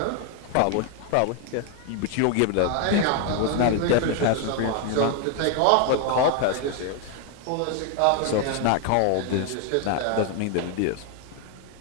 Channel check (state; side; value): different; both; correlation 0.01